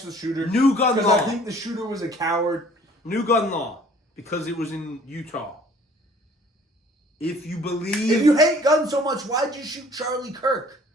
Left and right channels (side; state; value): both; normal; correlation 0.54